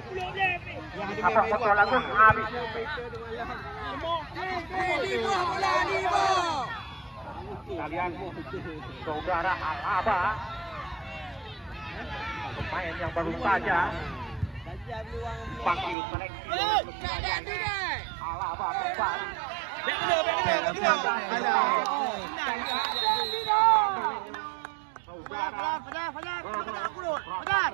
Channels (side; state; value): left; drops out; at 16.0 s